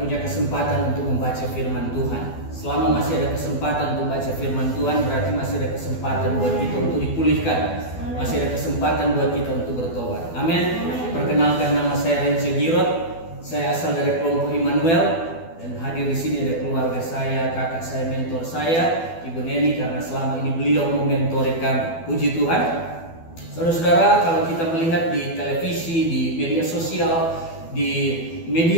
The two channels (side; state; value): right; late; 12 ms